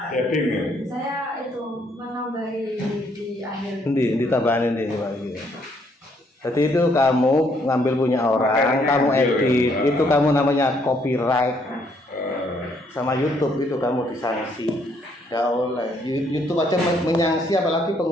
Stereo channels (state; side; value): normal; both; correlation 0.69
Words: Tapping ya. Saya itu menambahi di akhir. Ditambahin ini Pak iki. Jadi itu kamu ngambil punya orang, kamu edit, itu kamu namanya copyright. Sama YouTube itu kamu disanksi. Nggak oleh. YouTube aja menyangsi apalagi